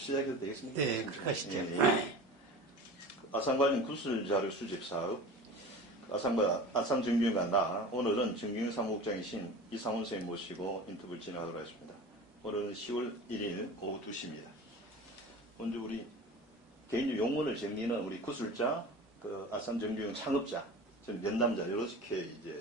되겠습니까? 네, 그렇게 하시죠. 예. 아산 관련 구술자료 수집 사업, 아산 정규가 나 오늘은 정규 사무국장이신 이상훈 선생님 모시고 인터뷰를 진행하도록 하겠습니다. 오늘은 10월 1일 오후 2시입니다. 먼저 우리 개인적 용어를 정리는 우리 구술자, 아산 정규 창업자, 저는 면담자 이렇게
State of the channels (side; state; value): both; normal; correlation 0.35